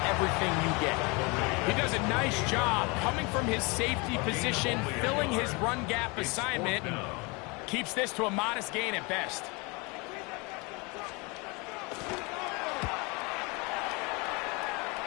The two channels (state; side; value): quieter; right; 28.2 dB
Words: everything you get. He does a nice job coming from his safety position, filling his run gap assignment, and keeps this to a modest gain at best.